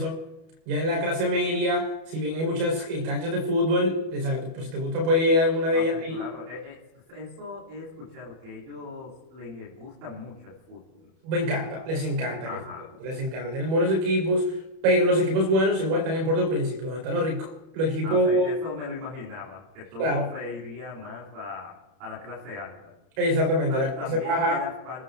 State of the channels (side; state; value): left; late; 31 ms